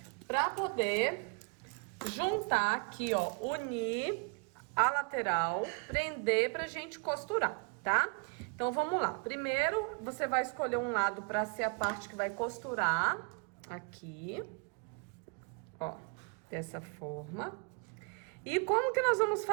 para poder juntar aqui, ó, unir a lateral, prender pra gente costurar, tá? Então, vamos lá. Primeiro, você vai escolher um lado para ser a parte que vai costurar aqui, ó, dessa forma. E como que nós vamos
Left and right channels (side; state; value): left; quieter; 34.4 dB